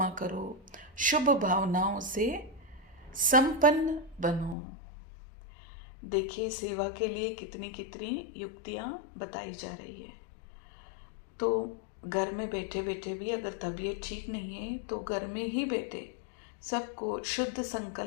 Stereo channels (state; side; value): drops out; right; at 4.5 s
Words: करो, शुभ भावनाओं से संपन्न बनो। देखिए सेवा के लिए कितनी कितनी युक्तियाँ बताई जा रही है। तो घर में बैठे बैठे भी अगर तबीयत ठीक नहीं है तो घर में ही बैठे सबको शुद्ध